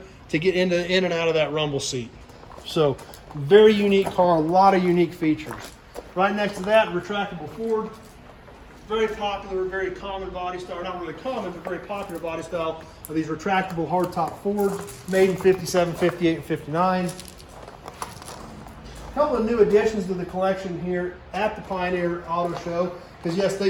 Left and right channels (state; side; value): identical; both; correlation 1.00